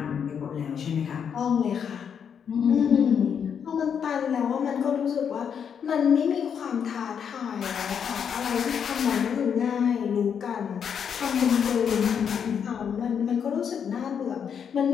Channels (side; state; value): right; quieter; 7.5 dB